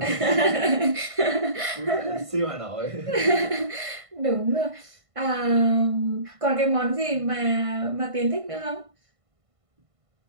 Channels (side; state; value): left; late; 1.5 ms